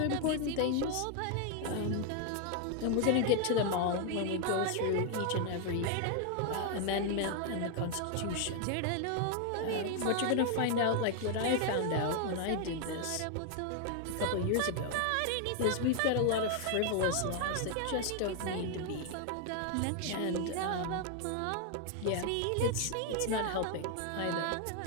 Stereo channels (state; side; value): different; both; correlation 0.00